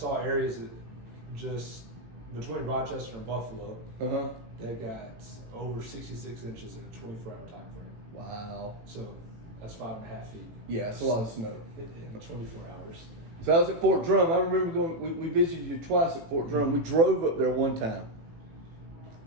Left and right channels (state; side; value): late; left; 18 ms